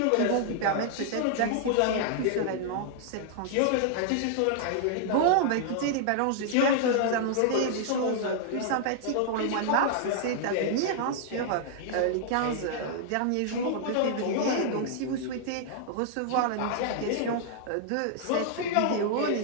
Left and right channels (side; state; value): both; different; correlation -0.01